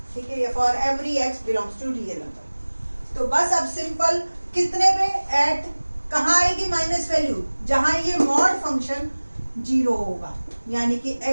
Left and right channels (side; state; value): both; inverted; correlation -1.00